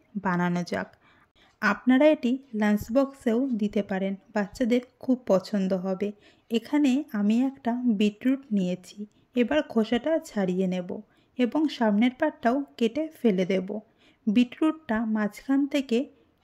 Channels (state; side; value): identical; both; correlation 1.00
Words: বানানো যাক। আপনারা এটি লাঞ্চ বক্সেও দিতে পারেন, বাচ্চাদের খুব পছন্দ হবে। এখানে আমি একটা বিটরুট নিয়েছি। এবার খোসাটা ছাড়িয়ে নেব এবং সামনের পাটটাও কেটে ফেলে দেব। বিটরুটটা মাঝখান থেকে